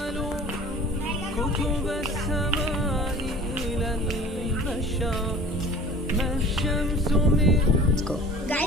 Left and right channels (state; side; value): normal; both; correlation 0.43